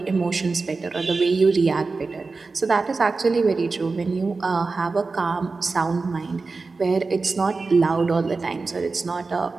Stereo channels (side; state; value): left; quieter; 4.0 dB